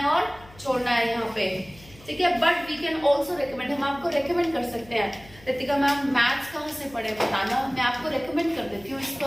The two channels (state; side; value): noise; left; hum, 23 dB below the sound